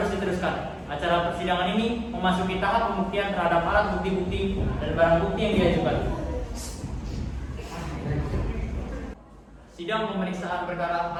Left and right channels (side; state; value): both; identical; correlation 1.00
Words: diteruskan. Acara persidangan ini memasuki tahap pembuktian terhadap alat bukti-bukti dan barang bukti yang diajukan. Sidang pemeriksaan perkara